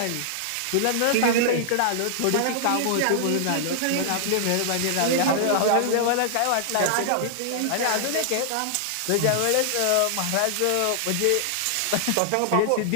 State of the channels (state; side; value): different; both; correlation -0.01